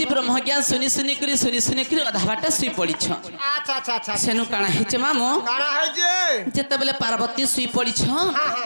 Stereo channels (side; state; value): both; inverted; correlation -1.00